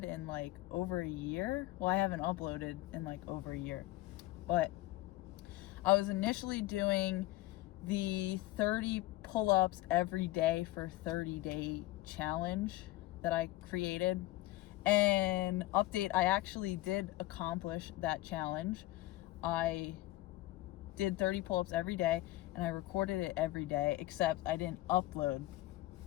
in like over a year. Well, I haven't uploaded in like over a year, but I was initially doing the 30 pull-ups every day for 30-day challenge that I created. And update, I actually did accomplish that challenge. I did 30 pull-ups every day and I recorded it every day, except I didn't upload.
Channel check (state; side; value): quieter; right; 17.7 dB